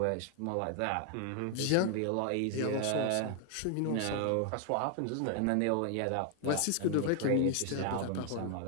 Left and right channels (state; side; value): different; both; correlation 0.00